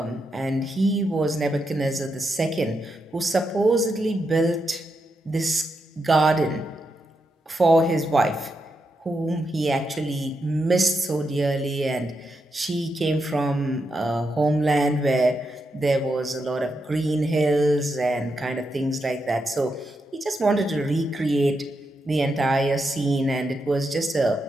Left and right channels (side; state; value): both; normal; correlation 0.84